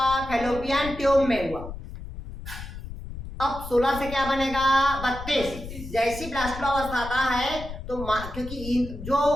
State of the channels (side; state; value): left; noise; rumble, 10 dB below the sound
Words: फैलोपियन ट्यूब में हुआ। अब 16 से क्या बनेगा, 32। जैसी ब्लास्टोलावस्था आता है तो क्योंकि जो